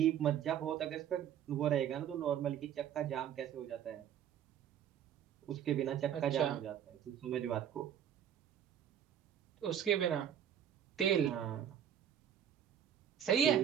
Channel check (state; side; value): quieter; left; 9.6 dB